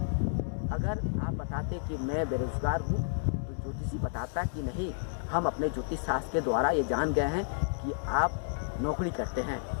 अगर आप बताते कि मैं बेरोजगार हूँ, तो ज्योतिषी बताता कि नहीं, हम अपने ज्योतिष शास्त्र के द्वारा ये जान गए हैं कि आप नौकरी करते हैं,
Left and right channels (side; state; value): right; silent; digital silence